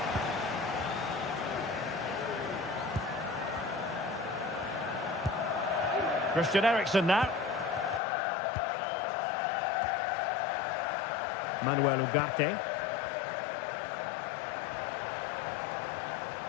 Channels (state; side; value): drops out; right; at 8.0 s